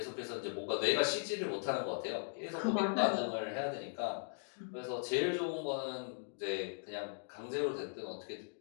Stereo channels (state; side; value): silent; right; digital silence